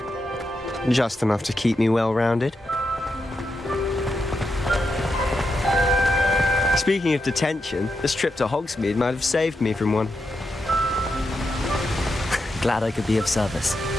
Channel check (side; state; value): both; normal; correlation 0.85